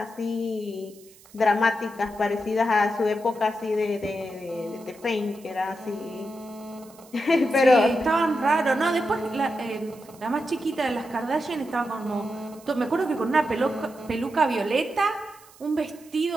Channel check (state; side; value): noise; right; hiss, 24 dB below the sound